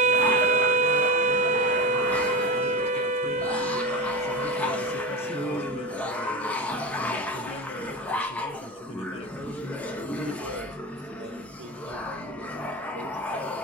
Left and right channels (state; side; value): normal; both; correlation 0.23